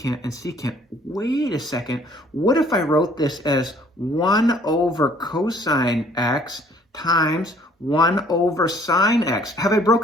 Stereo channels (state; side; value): normal; both; correlation 0.58